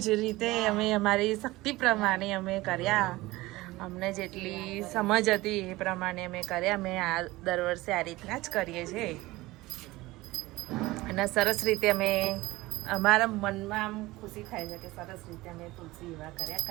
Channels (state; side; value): quieter; left; 19.5 dB